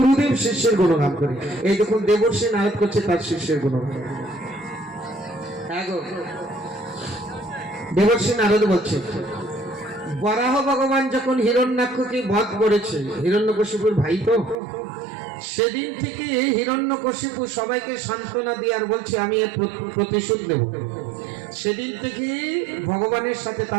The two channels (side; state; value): left; drops out; at 14.6 s